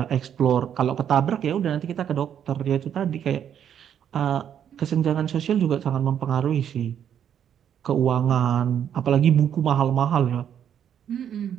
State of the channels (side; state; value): left; quieter; 9.1 dB